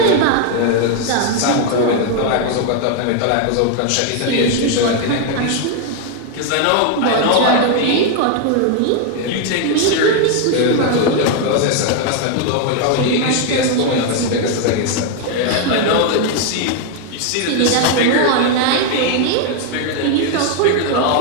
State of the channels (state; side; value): different; both; correlation 0.01